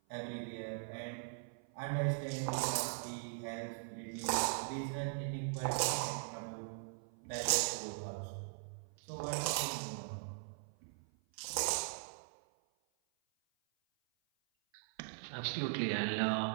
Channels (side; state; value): left; silent; 51 dB below the other